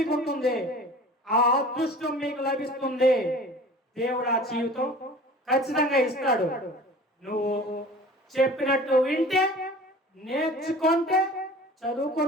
ఉంటుంది, ఆ అదృష్టం మీకు లభిస్తుంది. దేవుడు ఆ జీవితం ఖచ్చితంగా ఇస్తాడు. నువ్వు చెప్పినట్టు వింటే, నేర్చుకుంటే,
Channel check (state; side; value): normal; both; correlation 0.43